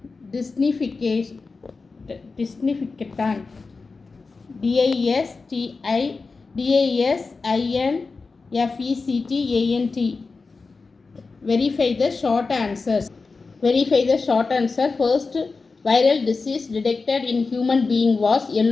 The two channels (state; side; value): quieter; right; 4.2 dB